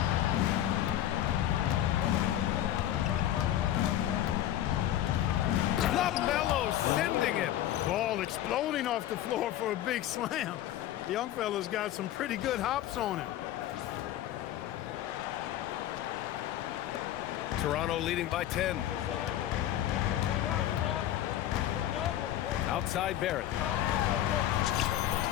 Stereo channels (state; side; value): quieter; right; 12.5 dB